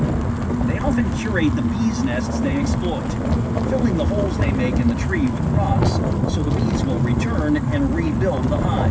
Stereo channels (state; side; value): identical; both; correlation 1.00